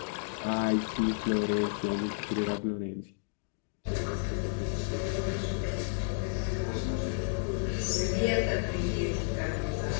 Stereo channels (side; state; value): right; silent; digital silence